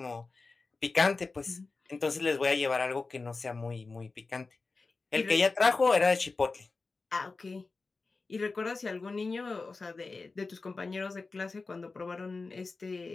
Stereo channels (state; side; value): quieter; right; 3.9 dB